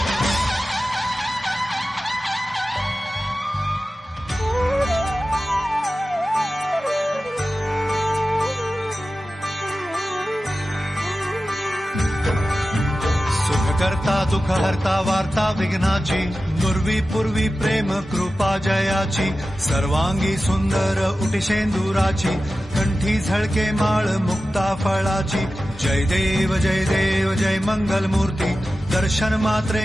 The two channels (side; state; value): both; normal; correlation 0.94